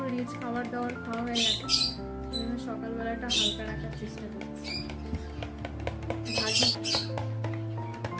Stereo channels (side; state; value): both; identical; correlation 1.00